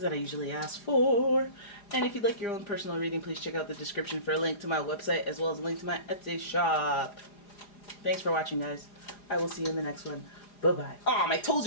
I usually ask for. And if you'd like your own personal reading, please check out the description for a link to my website as well as a link to my Etsy shop. Thanks for watching, guys. I will see you in the next one. Bye-bye. Oh, my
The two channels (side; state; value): right; late; 4.9 ms